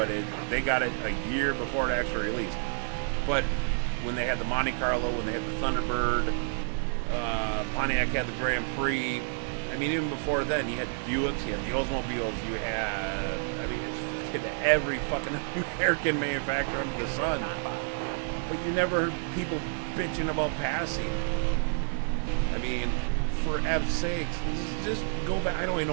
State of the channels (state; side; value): silent; left; digital silence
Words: they got it a year before it actually released. But when they had the Monte Carlo, when they had the Thunderbird, Pontiac had the Grand Prix. I mean, even before then, you had Buicks, you had the Oldsmobiles, you had, every fucking American manufacturer under the sun. But you never heard people bitching about passing. I mean, for F's sakes, just go back. I don't even